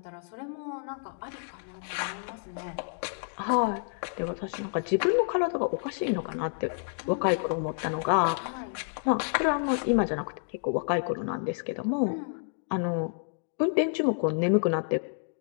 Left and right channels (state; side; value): silent; right; digital silence